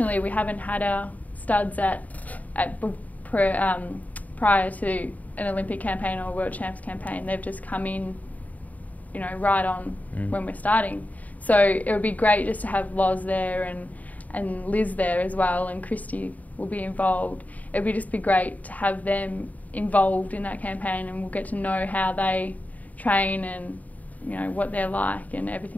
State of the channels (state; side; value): late; right; 0.074 ms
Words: we haven't had our studs prior to an Olympic campaign or a World Champs campaign. They've just come in, you know, right on when we're starting. So it would be great just to have Loz there and Liz there as well, and Christy will be involved, it'd be just be great to have them involved in that campaign, and we'll get to know how they train and, you know, what they're like and